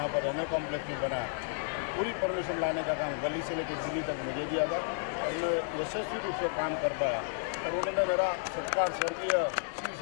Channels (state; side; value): silent; right; digital silence